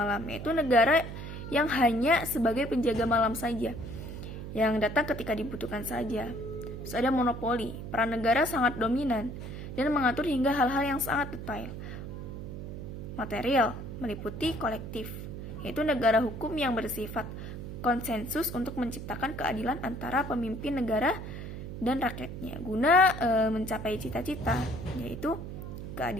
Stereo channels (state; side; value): noise; right; hum, 8 dB below the sound